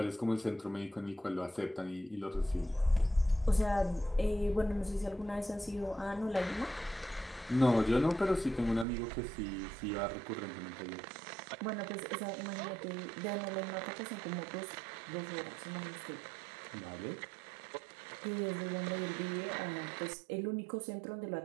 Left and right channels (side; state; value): left; drops out; at 8.8 s